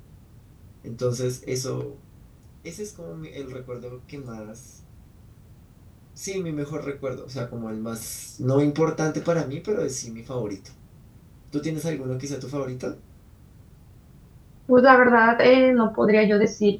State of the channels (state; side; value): identical; both; correlation 1.00